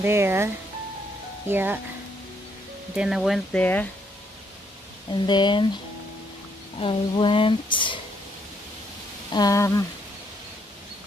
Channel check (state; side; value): normal; both; correlation 0.72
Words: yeah. Then I went there. And then I went,